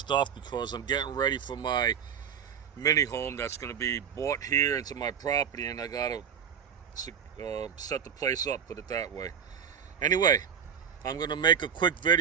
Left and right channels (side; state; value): left; quieter; 7.8 dB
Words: because I'm getting ready for my mini home that's going to be bought here into my property, and I got to set the place up, put it that way. Anyway, I'm going to make a quick